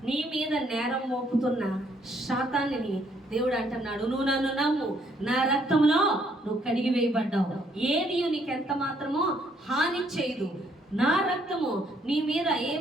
నీ మీద నేరం మోపుతున్న శాతాన్ని దేవుడు అంటున్నాడు, నువ్వు నన్ను నమ్ము, నా రక్తంలో నువ్వు కడిగి వేయబడ్డావు, ఏది నీకు ఎంత మాత్రమో హాని చేయదు, నా రక్తము నీ మీద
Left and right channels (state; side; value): normal; both; correlation 0.69